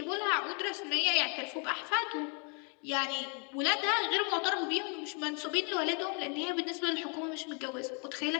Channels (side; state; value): right; quieter; 37.7 dB